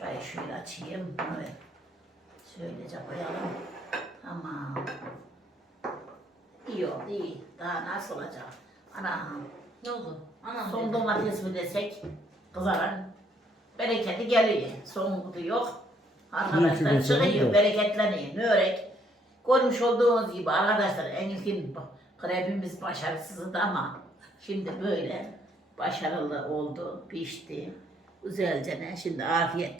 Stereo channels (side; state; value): both; normal; correlation 0.68